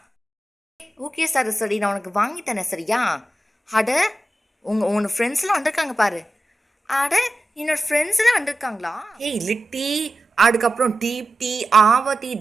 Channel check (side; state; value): both; normal; correlation 0.93